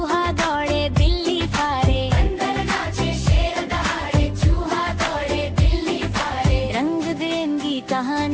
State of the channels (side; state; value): both; identical; correlation 1.00